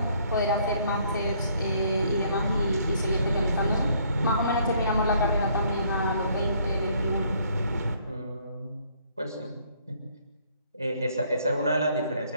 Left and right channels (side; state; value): both; inverted; correlation -0.65